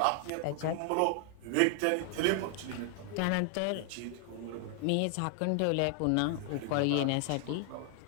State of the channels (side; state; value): both; different; correlation 0.00